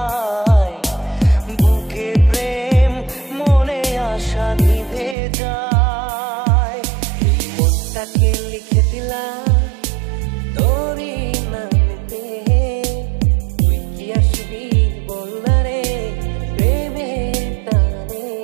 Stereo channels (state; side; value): drops out; left; at 5.2 s